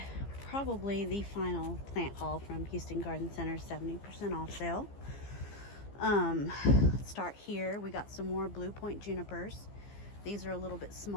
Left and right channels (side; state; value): right; late; 15 ms